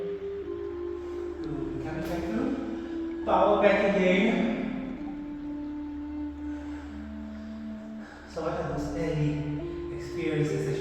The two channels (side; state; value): both; identical; correlation 1.00